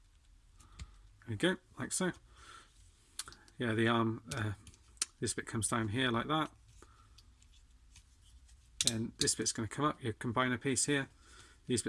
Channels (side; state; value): both; identical; correlation 1.00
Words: There we go, like so. Yeah, the arm, this bit comes down here like that. And this bit's going to come up, your combiner piece here. These